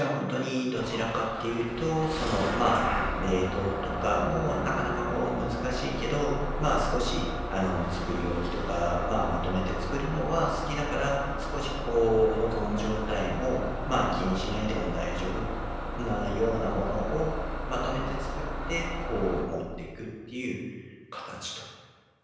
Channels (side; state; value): both; identical; correlation 1.00